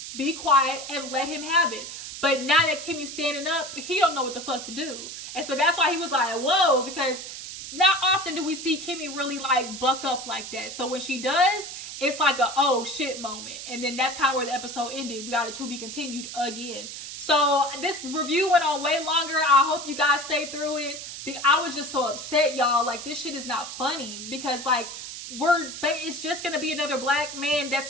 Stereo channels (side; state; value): right; noise; hiss, 9 dB below the sound